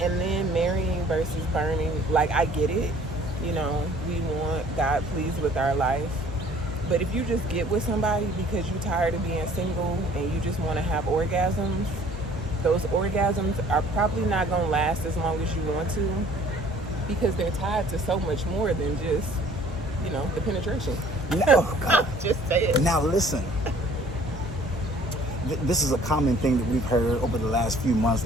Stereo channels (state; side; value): normal; both; correlation 0.54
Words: then marrying versus burning, like, I get it. We want God pleased with our life. But if you just get with somebody because you're tired of being single and you just want to have orgasms, those orgasms are probably not going to last as long as you want to, because they're tied to so much more than just, the penetration. No, God. Just say it. Now listen, this is a common thing that we've heard over the last few months,